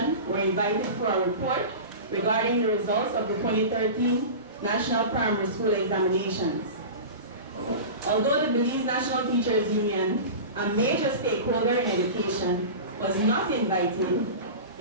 were invited for a report regarding the results of the 2013 National Primary School Examinations. Although the Belize National Teachers Union, a major stakeholder in education, was not invited,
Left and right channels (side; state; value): both; inverted; correlation -0.31